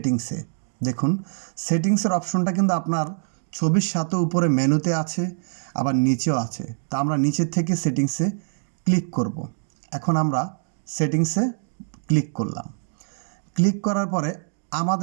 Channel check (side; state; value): left; silent; digital silence